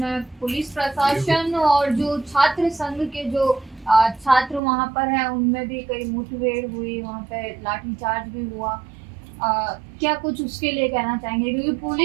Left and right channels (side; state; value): left; drops out; at 4.6 s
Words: पुलिस प्रशासन और जो छात्र संघ के जो छात्र वहां पर हैं, उनमें भी कई मुठभेड़ हुई, वहां पे लाठीचार्ज भी हुआ। क्या कुछ उसके लिए कहना चाहेंगे, क्योंकि